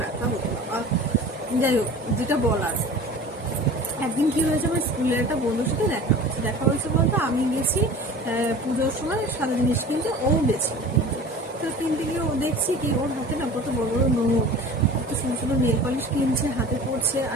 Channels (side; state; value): both; normal; correlation 0.40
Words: ব্যথা হতো বাবা। যাই হোক, যেটা বলার, একদিন কি হয়েছে, আমার স্কুলের একটা বন্ধুর সাথে দেখা হয়েছে বলতে আমি গেছি পুজোর সময় সাদা জিনিস কিনতে, ও গেছে কিনতে। তো কিনতে গিয়ে ও দেখছি কি ওর হাতে না কত বড় বড় নোট, কত সুন্দর সুন্দর নেল পালিশ কিনছে, হাতে পড়ছে,